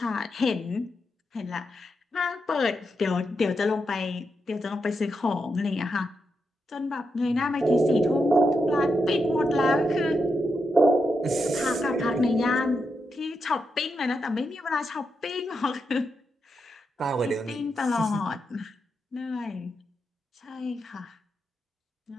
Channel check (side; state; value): both; normal; correlation 0.85